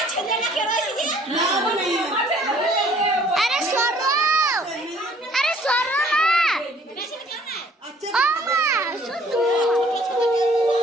ছেলে না কে রয়েছে যে? আরে সরো, আরে সরো না। ও মা শুধু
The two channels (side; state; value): both; normal; correlation 0.58